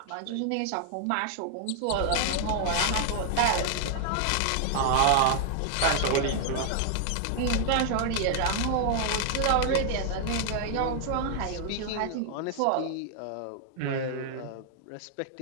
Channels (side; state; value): both; different; correlation 0.00